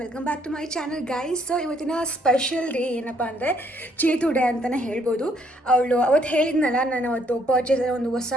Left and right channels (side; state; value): both; normal; correlation 0.68